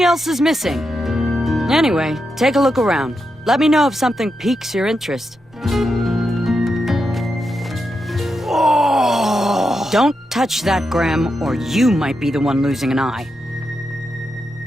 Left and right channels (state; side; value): normal; both; correlation 0.86